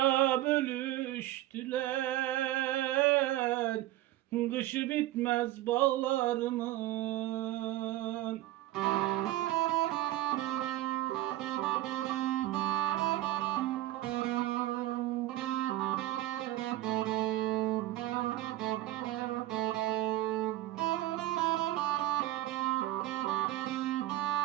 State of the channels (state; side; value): quieter; left; 15.3 dB